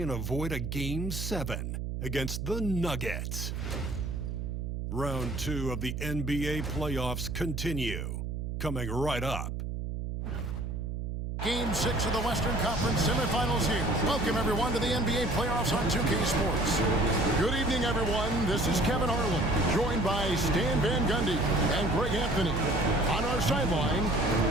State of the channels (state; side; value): noise; right; hum, 4 dB below the sound